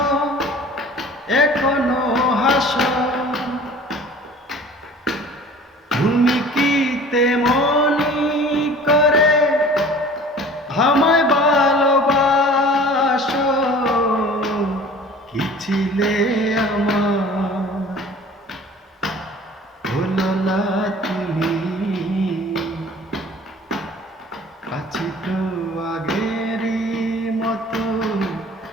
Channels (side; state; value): both; normal; correlation 0.46